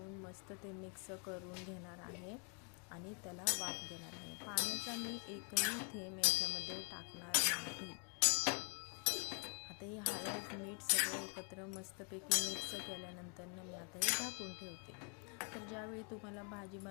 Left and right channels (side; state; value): right; quieter; 38.3 dB